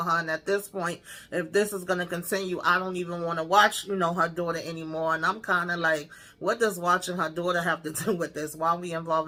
her. And at this point, if this is going to continue, I don't even want to watch, her daughter anymore. And I'm kind of like, what does watching her daughter have to do with this? Why are we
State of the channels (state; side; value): identical; both; correlation 1.00